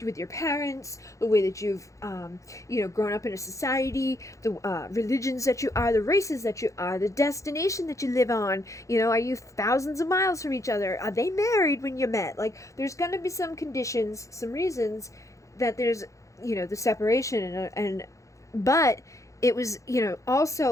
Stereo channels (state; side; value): late; right; 0.15 ms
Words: with your parents, the way that you've, grown up in a society, the religions that you are, the races that you are, the destination that you live on. Are you thousands of miles from each other? Are they married when you met? Like, there's going to be some conditions, some reasons that there's, the separation but it was,